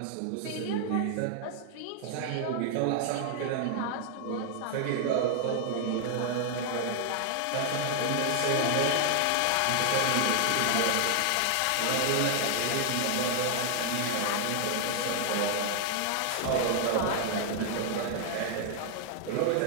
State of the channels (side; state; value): both; different; correlation 0.00